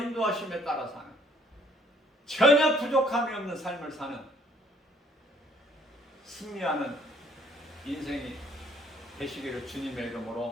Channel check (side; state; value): both; normal; correlation 0.62